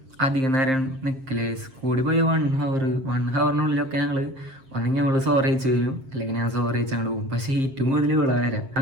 അധികം നേരം നിൽക്കില്ലേ. കൂടി പോയി 1 ഹവറിനുള്ളിലൊക്കെ ഞങ്ങള് ഒന്നെങ്കിൽ ഞങ്ങള് സോറി അയച്ചു വരും, അല്ലെങ്കിൽ ഞാൻ സോറി അയച്ച് അങ്ങോട്ട് പോകും. പക്ഷെ ഏറ്റവും കൂടുതൽ ഇവളെ വരാം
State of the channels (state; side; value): late; left; 7.6 ms